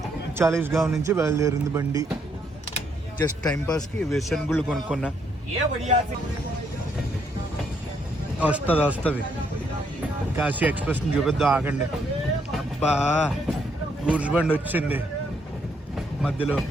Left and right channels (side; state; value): both; normal; correlation 0.73